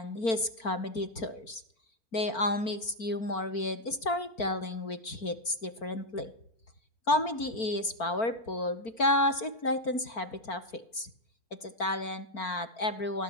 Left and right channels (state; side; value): late; right; 4.4 ms